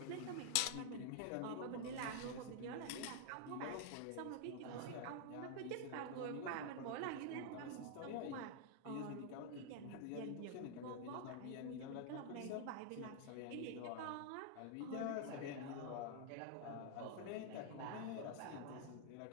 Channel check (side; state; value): both; different; correlation 0.00